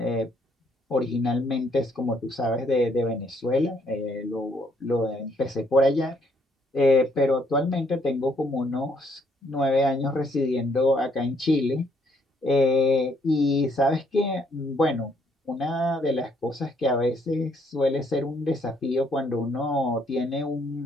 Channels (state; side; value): normal; both; correlation 0.69